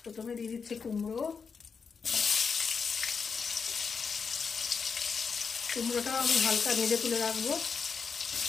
প্রথমে দিয়ে দিচ্ছি কুমড়ো। কুমড়োটাও আমি হালকা ভেজে তুলে রাখবো।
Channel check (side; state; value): right; quieter; 5.6 dB